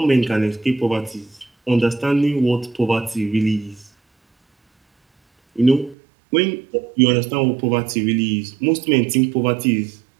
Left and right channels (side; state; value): left; drops out; at 6.0 s